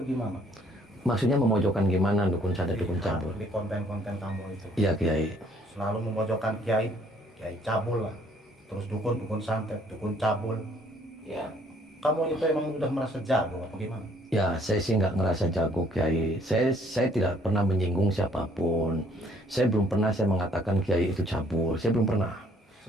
gimana? Maksudnya memojokkan gimana dukun santet, dukun cabul? Di konten-konten kamu itu. Iya, Kiai. Selalu memojokkan kiai, kiai cabul lah. Terus dukun, dukun santet, dukun cabul. Ya, Kamu itu emang udah merasa jago apa gimana? Ya, saya sih nggak ngerasa jago, Kiai. Saya tidak pernah menyinggung siapapun. Saya belum pernah saya mengatakan Kiai itu cabul. Saya belum pernah.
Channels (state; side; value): normal; both; correlation 0.63